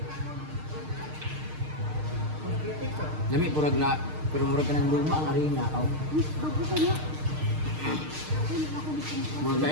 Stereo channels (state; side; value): late; left; 6.5 ms